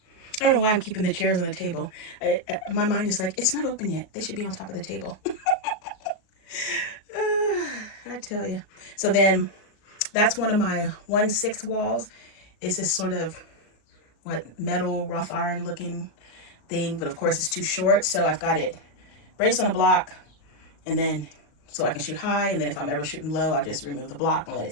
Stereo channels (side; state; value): right; late; 38 ms